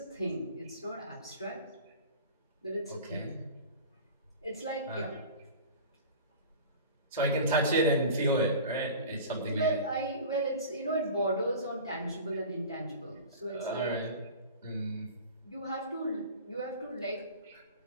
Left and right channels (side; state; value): both; inverted; correlation -0.38